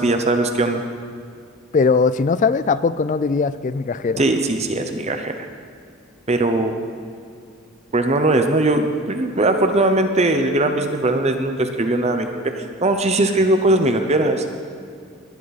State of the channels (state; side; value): normal; both; correlation 0.36